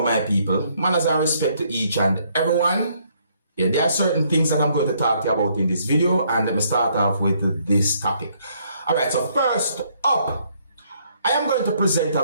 my people. Manners and respect to each and everyone. Yeah, there are certain things that I'm going to talk to you about in this video, and let me start off with this topic. Alright, so first up, I am going to present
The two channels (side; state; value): both; inverted; correlation -0.68